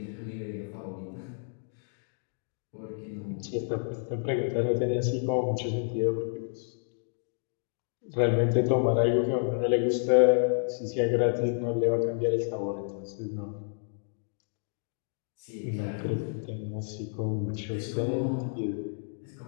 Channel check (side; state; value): right; silent; digital silence